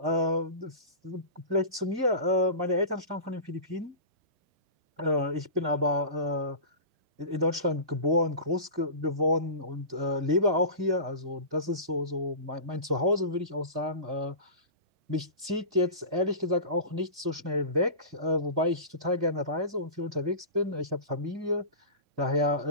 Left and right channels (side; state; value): left; late; 2.2 ms